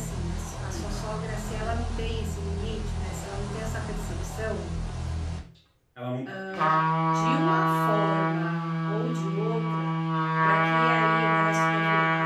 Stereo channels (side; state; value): both; identical; correlation 1.00